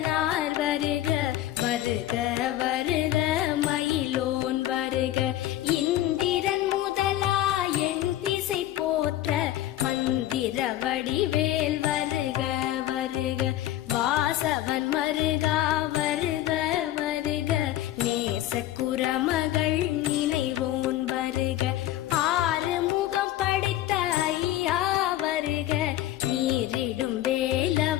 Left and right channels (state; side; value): quieter; right; 13.8 dB